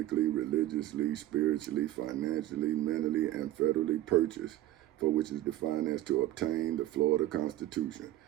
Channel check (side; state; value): left; quieter; 14.4 dB